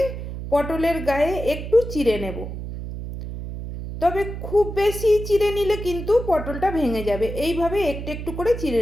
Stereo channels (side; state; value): right; noise; hum, 7 dB below the sound